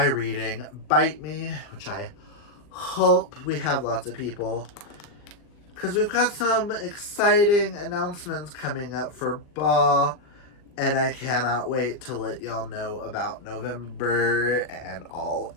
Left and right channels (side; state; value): right; late; 39 ms